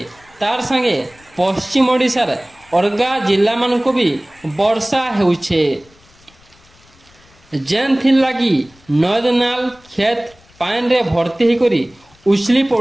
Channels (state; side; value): noise; left; rumble, 29 dB below the sound